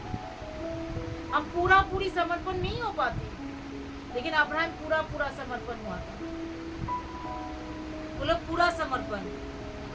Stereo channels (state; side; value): identical; both; correlation 1.00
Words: हम पूरी समर्पण नहीं हो पाते। लेकिन अब्राहम पूरा समर्पण हुआ था। बोलो पूरा समर्पण